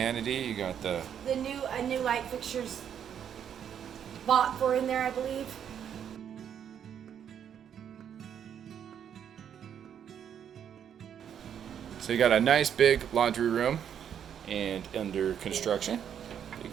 you got the new light fixtures bought for in there, I believe. So you got a nice big laundry room and under construction. You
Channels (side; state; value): left; quieter; 8.8 dB